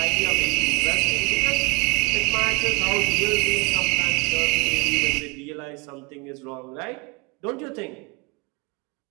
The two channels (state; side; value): quieter; left; 27.4 dB